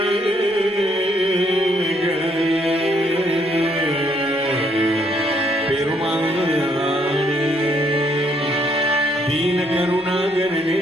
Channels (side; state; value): both; normal; correlation 0.69